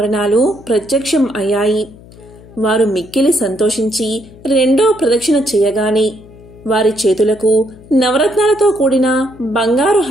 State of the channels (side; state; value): left; noise; hum, 22 dB below the sound